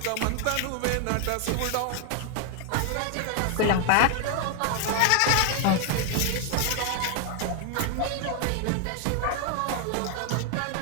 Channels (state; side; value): different; both; correlation 0.00